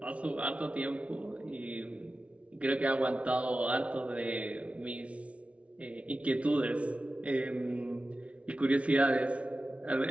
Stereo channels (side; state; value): left; late; 0.063 ms